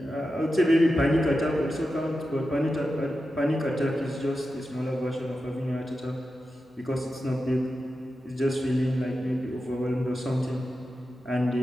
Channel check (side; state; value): both; normal; correlation 0.91